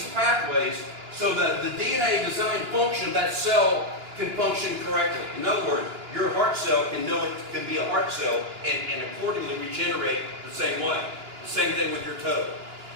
pathways so that the DNA design function of that cell can function correctly. In other words, your heart cell can know it can be a heart cell and accordingly regenerate the same way. The same thing with your toe.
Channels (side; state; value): left; late; 2.9 ms